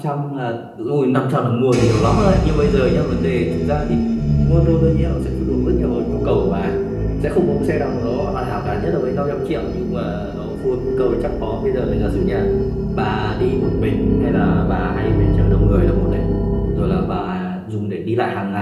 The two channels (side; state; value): both; identical; correlation 1.00